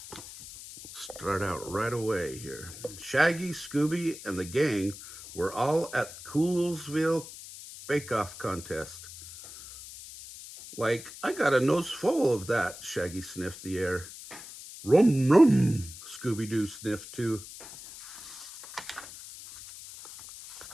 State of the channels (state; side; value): noise; left; hiss, 14 dB below the sound